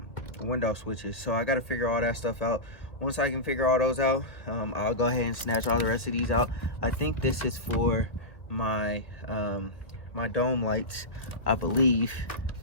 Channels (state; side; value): late; right; 1.4 ms